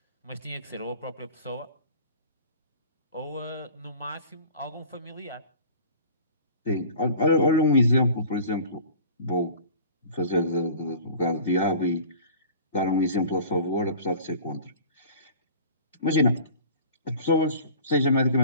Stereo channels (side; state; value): both; inverted; correlation -0.44